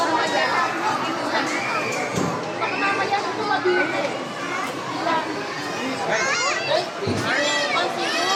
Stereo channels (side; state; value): both; identical; correlation 1.00